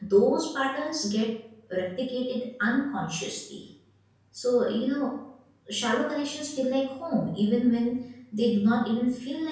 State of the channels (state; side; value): identical; both; correlation 1.00